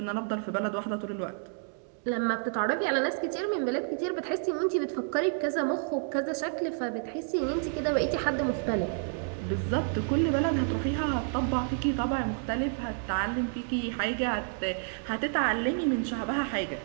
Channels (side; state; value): left; silent; digital silence